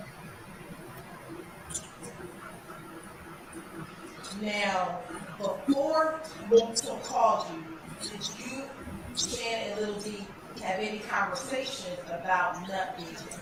Now, before Moonton called you, did you, Shannon and Little D, have any conversations about Nut being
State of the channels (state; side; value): identical; both; correlation 1.00